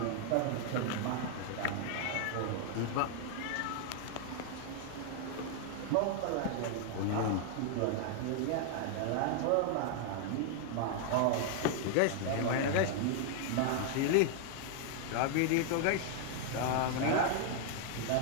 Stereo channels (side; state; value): both; different; correlation 0.00